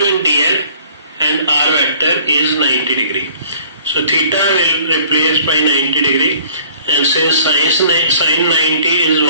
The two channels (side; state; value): both; inverted; correlation -0.53